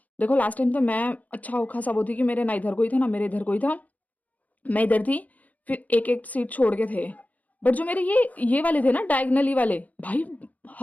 देखो लास्ट टाइम तो मैं अच्छा खासा वो थी कि मेरे ना इधर कोई था ना मेरे इधर कोई था, मैं इधर थी, फिर एक-एक सीट छोड़ के थे। बट जो मेरे ये वाले थे ना डायगोनली वाले, भाई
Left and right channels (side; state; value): right; late; 0.076 ms